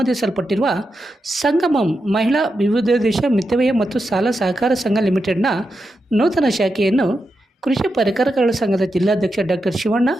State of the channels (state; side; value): normal; both; correlation 0.87